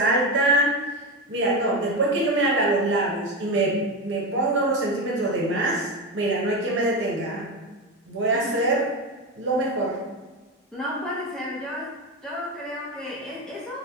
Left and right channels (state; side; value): normal; both; correlation 0.16